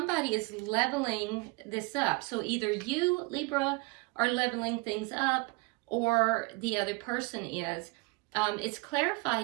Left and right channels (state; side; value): quieter; left; 27.1 dB